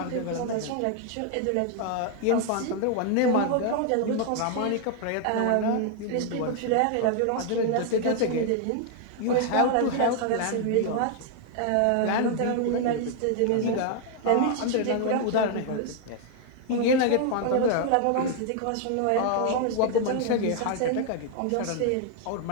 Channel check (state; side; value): different; both; correlation 0.00